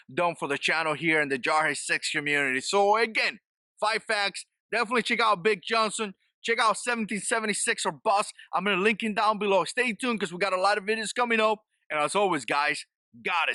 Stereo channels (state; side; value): identical; both; correlation 1.00